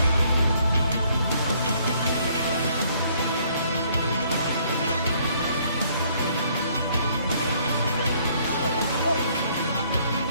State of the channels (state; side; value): inverted; both; correlation -0.64